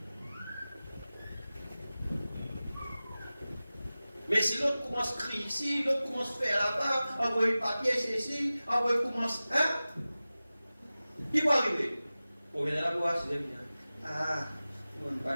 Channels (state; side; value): inverted; both; correlation -0.96